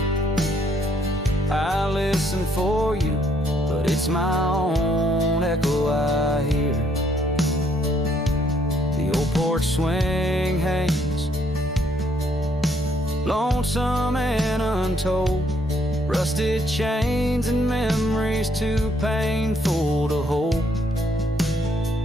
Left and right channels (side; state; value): both; normal; correlation 0.69